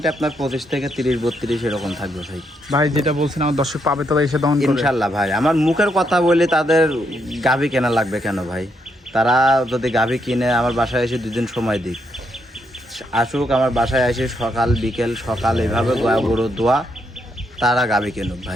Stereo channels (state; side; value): normal; both; correlation 0.77